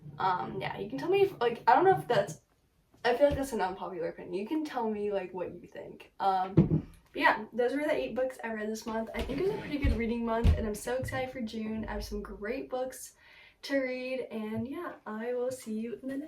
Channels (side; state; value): both; identical; correlation 1.00